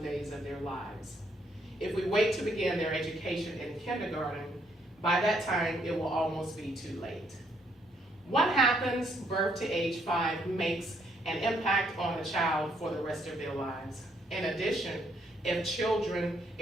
days of their lives. If we wait to begin their education in kindergarten, by that time it will almost be too late. What happens birth to age 5 makes an impact on the child for the rest of their lives. In addition, if children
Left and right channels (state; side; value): normal; both; correlation 0.71